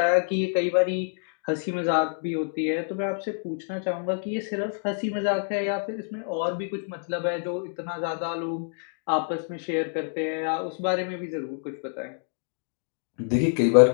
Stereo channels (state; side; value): silent; right; digital silence